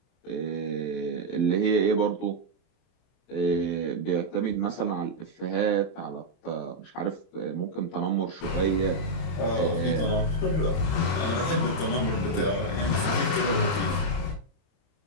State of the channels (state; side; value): late; right; 31 ms